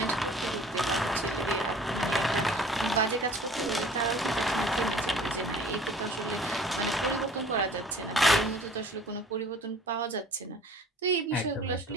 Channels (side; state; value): both; normal; correlation 0.49